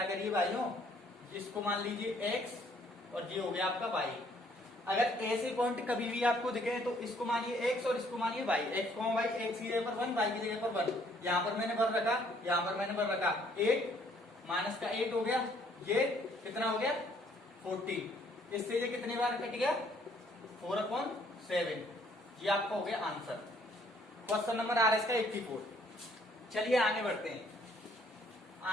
करिए भाइयों, इसको मान लीजिए x और ये हो गया आपका y। अगर ऐसे पॉइंट कभी भी आपको दिखे तो इसको मानिए x और इसको मानिए y, x को y, x की जगह पर 1, y की जगह पर 1। यहाँ पर मैंने भर रखा, यहाँ पर मैंने भर रखा 8 माइनस का 8 हो गया, ये कितना हो गया 14। इससे ये कितनी बार कट गया 4/7। ये आपका हो गया आंसर, क्वेश्चन नंबर RS का 84। चलिए आगे बढ़ते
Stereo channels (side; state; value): both; normal; correlation 0.63